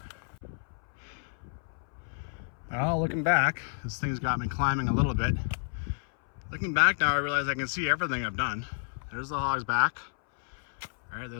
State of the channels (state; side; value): silent; right; 58 dB below the other